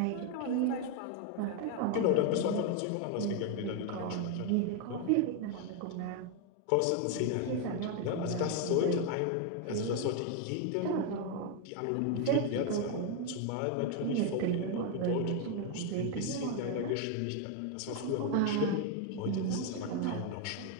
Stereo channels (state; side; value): different; both; correlation 0.01